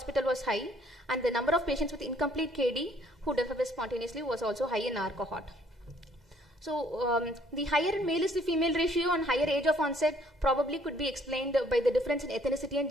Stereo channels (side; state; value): both; normal; correlation 0.62